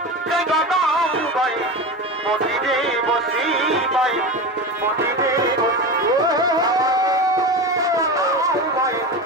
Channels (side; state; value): both; normal; correlation 0.24